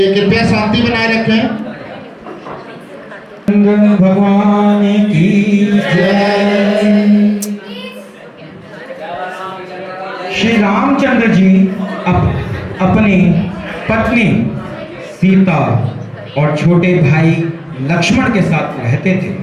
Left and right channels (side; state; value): both; identical; correlation 1.00